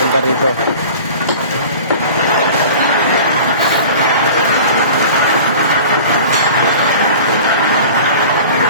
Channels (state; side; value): inverted; both; correlation -0.40